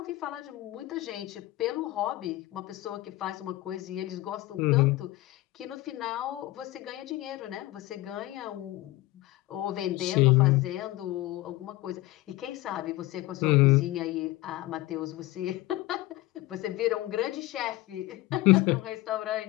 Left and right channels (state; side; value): quieter; right; 17.9 dB